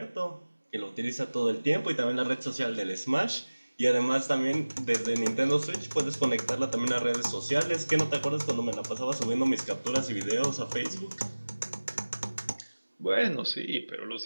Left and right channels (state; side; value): inverted; both; correlation -1.00